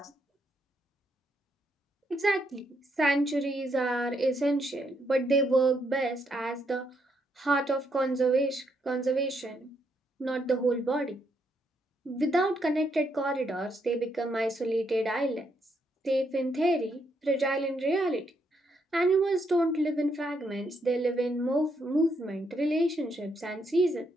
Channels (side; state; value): both; normal; correlation 0.76